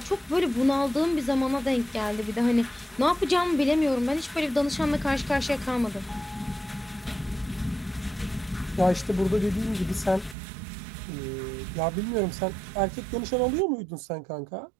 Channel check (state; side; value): drops out; left; at 10.4 s